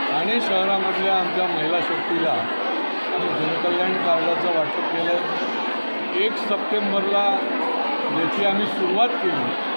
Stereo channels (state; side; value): inverted; both; correlation -1.00